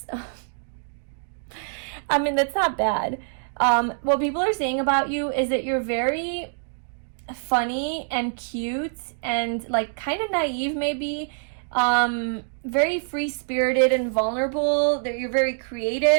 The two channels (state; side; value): silent; left; digital silence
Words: I mean, that's not bad. What people are saying about you is that you're very funny and cute and like kind of naive, maybe. Very free-spirited and vulnerable. That you're very